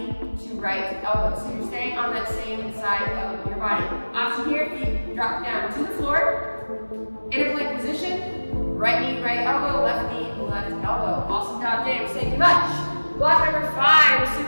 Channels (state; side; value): inverted; both; correlation -1.00